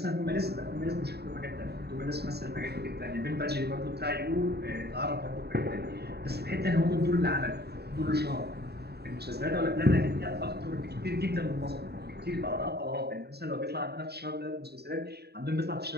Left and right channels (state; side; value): late; left; 0.47 ms